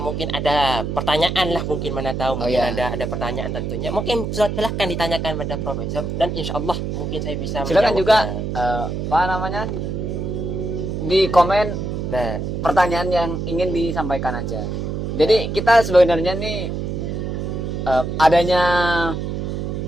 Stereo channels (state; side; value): noise; right; hum, 3 dB below the sound